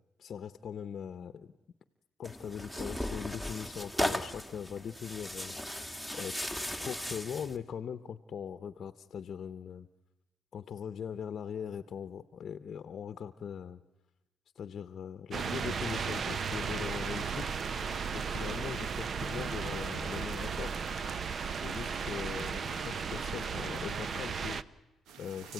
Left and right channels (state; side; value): normal; both; correlation 0.76